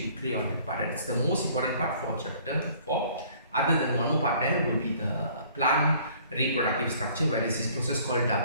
clear on that part. It's the most important part for chapter 4. Other than one more part, there will be the plant reproductive structure, where there is this process called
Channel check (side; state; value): both; inverted; correlation -0.56